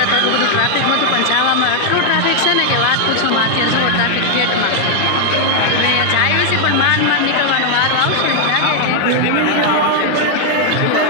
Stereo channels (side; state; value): both; different; correlation 0.00